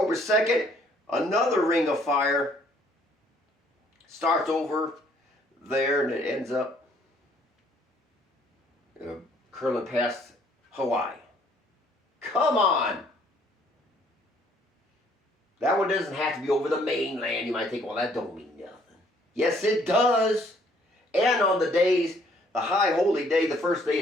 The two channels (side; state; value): both; normal; correlation 0.63